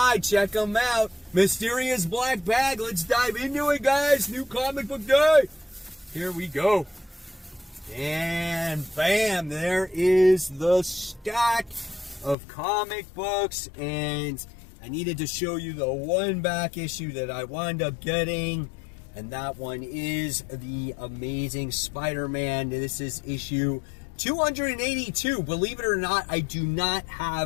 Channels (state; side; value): drops out; right; at 12.4 s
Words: check them out. Mysterious Black Bag, let's dive into it, guys. New comic book day. Here we go. And bam, there is the stack of comic books, and I needed to show you the one back issue that I wound up getting, and that one is the Amazing Spider-Man. This is issue 282. Believe it or not, I do not